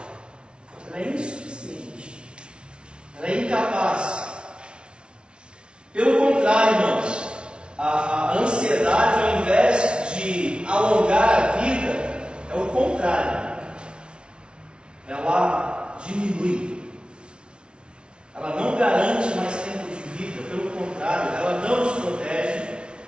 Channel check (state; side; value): late; left; 0.057 ms